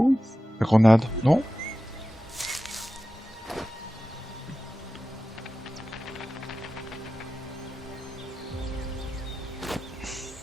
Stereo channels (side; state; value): both; normal; correlation 0.94